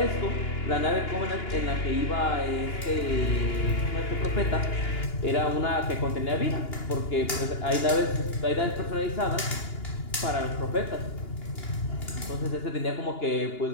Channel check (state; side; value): late; right; 2.9 ms